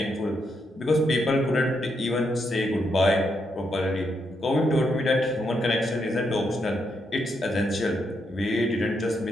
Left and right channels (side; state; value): both; normal; correlation 0.80